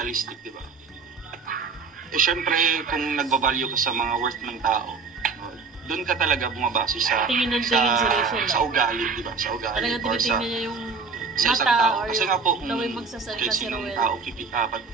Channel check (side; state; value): left; quieter; 4.8 dB